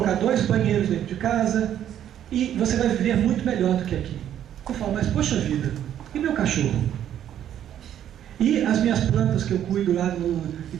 2 banheiros dentro de casa, e você vai viver muito melhor do que aqui. Eu falo: mas poxa vida, e meu cachorro? E as minhas plantas que eu cuido lá, e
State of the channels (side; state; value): left; quieter; 10.6 dB